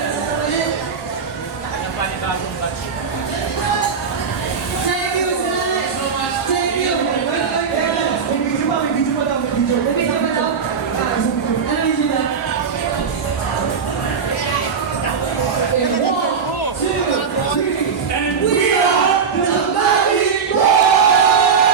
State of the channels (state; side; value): quieter; left; 6.1 dB